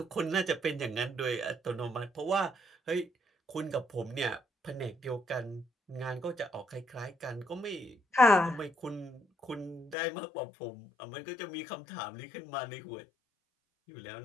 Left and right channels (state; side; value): drops out; right; at 10.0 s